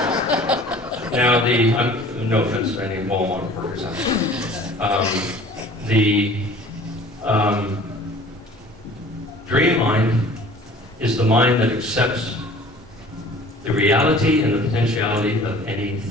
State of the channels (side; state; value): both; normal; correlation 0.47